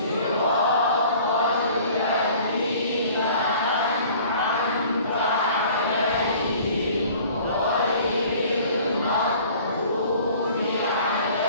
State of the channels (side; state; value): both; inverted; correlation -0.49